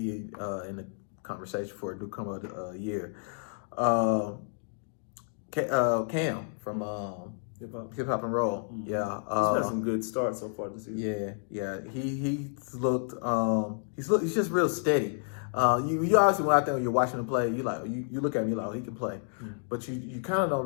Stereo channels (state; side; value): silent; right; digital silence